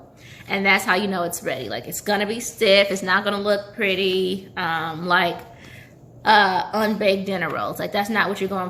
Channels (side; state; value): both; identical; correlation 1.00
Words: And that's how you know it's ready. Like, it's gonna be stiff. It's not gonna look pretty, like unbaked dinner rolls. Like, that's not what you're